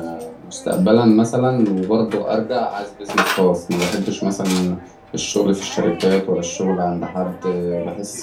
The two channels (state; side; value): identical; both; correlation 1.00